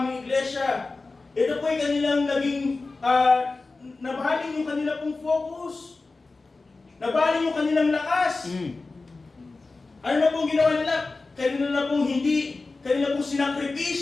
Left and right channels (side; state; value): right; quieter; 3.6 dB